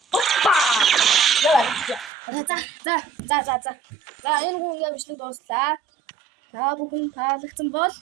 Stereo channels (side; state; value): left; drops out; at 2.1 s